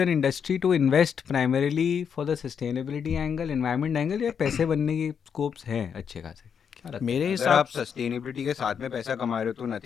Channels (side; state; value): right; quieter; 7.2 dB